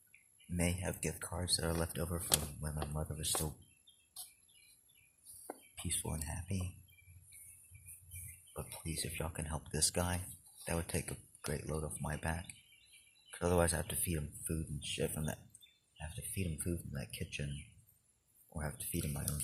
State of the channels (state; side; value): identical; both; correlation 1.00